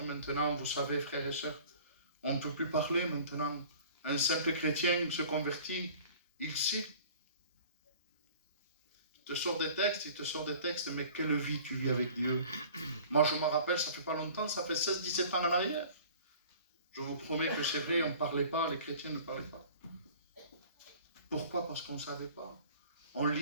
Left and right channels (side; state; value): both; inverted; correlation -0.46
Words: maintenant, vous savez, frères et sœurs, on ne peut plus parler maintenant. Un simple chrétien se convertit, il sait. Il te sort des textes, mais quelle vie tu vis avec Dieu? Moi, je me rappelle, ça fait pas longtemps, ça fait 16-17 ans en arrière. Je vous promets que c'est vrai, on ne parlait pas, les chrétiens ne parlaient pas. Pourquoi? Parce qu'on ne savait pas. On